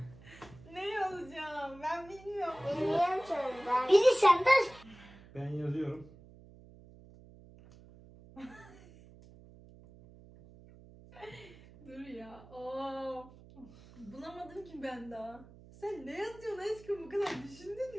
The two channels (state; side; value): noise; right; hum, 21 dB below the sound